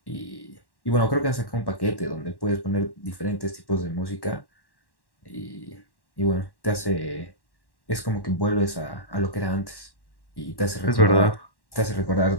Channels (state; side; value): late; right; 1.1 ms